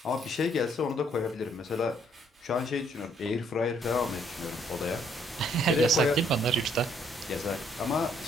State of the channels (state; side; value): normal; both; correlation 0.66